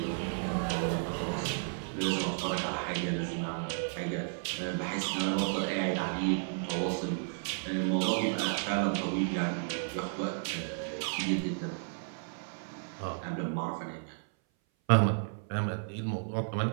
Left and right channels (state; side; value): silent; left; 56 dB below the other